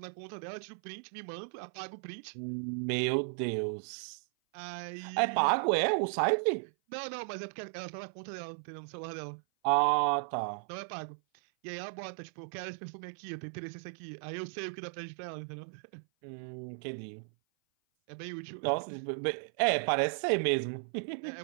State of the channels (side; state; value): left; silent; 54 dB below the other